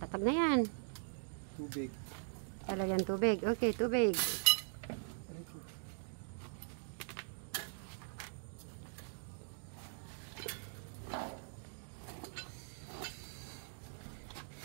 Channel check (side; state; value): left; silent; digital silence